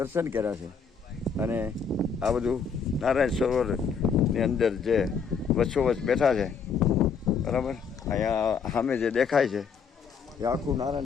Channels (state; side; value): quieter; right; 6.0 dB